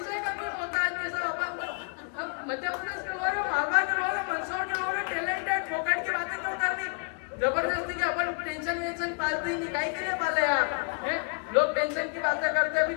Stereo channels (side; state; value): right; quieter; 36.3 dB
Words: का भी होता है कि सब अपन मध्य प्रदेश के लोग, मालवा के लोग, मंदसौर के लोग टैलेंटेड, फोकट की बातें क्यों करनी जबरदस्ती के? अपन टेंशन वेंशन पालते ही नहीं, काहे के लिए पाले यार? लोग टेंशन की बातें करते। अभी